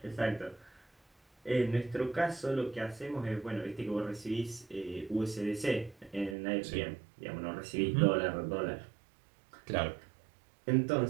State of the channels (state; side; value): drops out; left; at 6.4 s